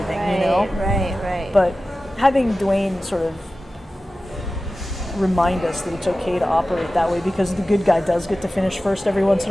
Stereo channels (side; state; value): both; normal; correlation 0.95